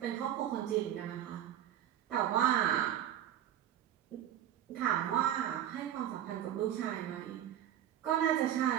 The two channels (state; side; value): quieter; left; 11.1 dB